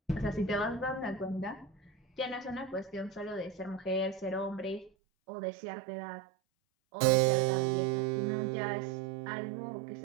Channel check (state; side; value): drops out; left; at 4.9 s